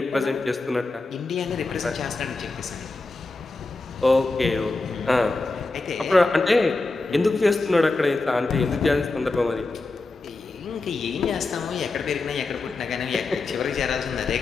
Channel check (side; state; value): right; quieter; 3.4 dB